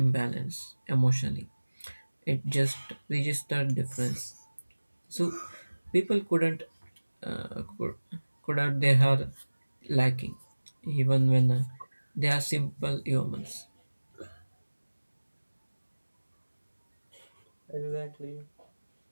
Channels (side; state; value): both; inverted; correlation -1.00